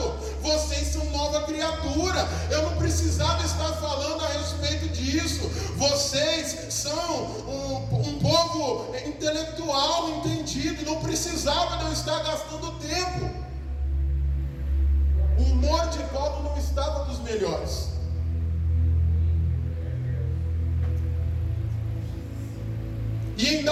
vocês são nova criatura. Eu não precisava estar falando a respeito disso. Vocês são um povo intelectual, entendido. Não precisava de eu estar gastando tempo. O humor de Paulo não estava dos melhores. E em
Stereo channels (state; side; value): identical; both; correlation 1.00